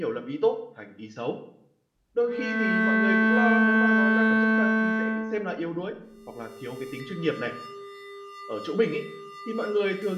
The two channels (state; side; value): identical; both; correlation 1.00